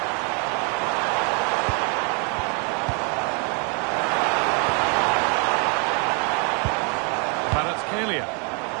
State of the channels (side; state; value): left; quieter; 36.6 dB